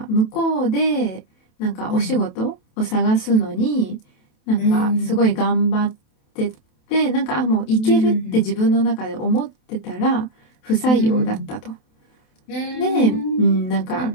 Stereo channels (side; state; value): right; late; 27 ms